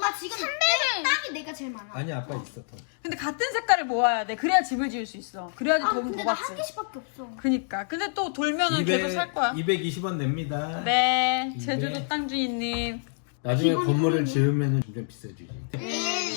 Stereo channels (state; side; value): silent; right; digital silence